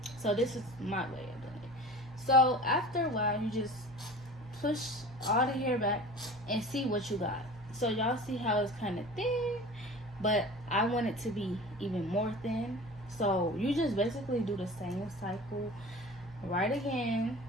so this is my way of doing it. So after a while you just push all the hair back and see what you got. So y'all see how it's kind of thin, but I want it to be even more thin. So you just basically do the same cycle right again.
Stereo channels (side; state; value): both; normal; correlation 0.38